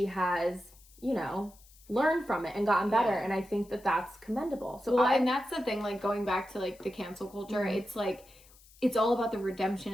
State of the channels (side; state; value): left; noise; hiss, 26 dB below the sound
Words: has, you know, learned from it and gotten better. And I think that that's commendable. So and that's the thing, like going back to like the cancel culture, it's like, it's all about the redemption